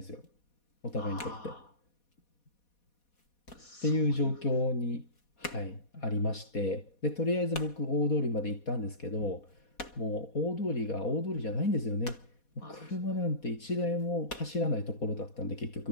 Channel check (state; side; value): late; right; 4.2 ms